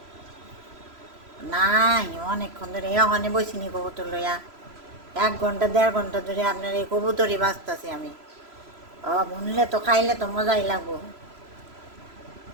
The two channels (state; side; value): late; left; 3.0 ms